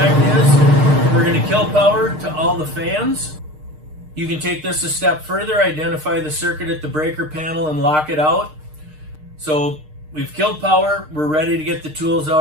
is. We're going to kill power to all the fans. You can take this a step further, identify the circuit at the breaker panel and lock it out. So we've killed power, we're ready to get the tools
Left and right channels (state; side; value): late; left; 6.5 ms